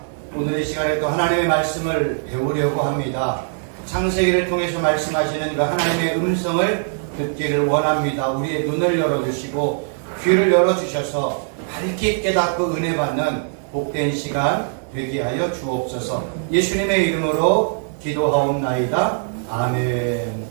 오늘 이 시간에 또 하나님의 말씀을 배우려고 합니다. 창세기를 통해서 말씀하시는 그 하나님의 음성을 듣기를 원합니다. 우리의 눈을 열어주시고 귀를 열어주셔서 밝게 깨닫고 은혜 받는 복된 시간 되게 하여 주옵소서. 예수님의 이름으로 기도하옵나이다. 아멘.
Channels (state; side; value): silent; left; digital silence